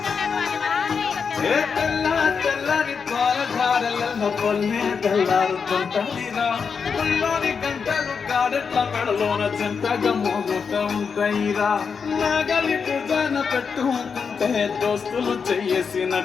తెల్లని పాలధారల పొల్లే తెల్లారుతుంటాయిరా ముల్లోని గంటలు కాడెట్ల మెడలోన చెంతగా మోగుతూ ఉంటాయిరా నాగలి పూజన పెట్టుకుంటే దోస్తులు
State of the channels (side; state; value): right; quieter; 5.9 dB